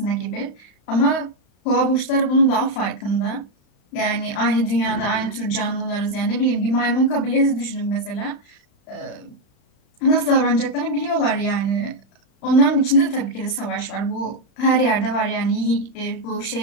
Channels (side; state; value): right; late; 35 ms